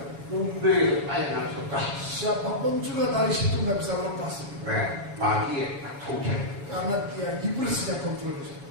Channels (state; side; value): late; left; 7.1 ms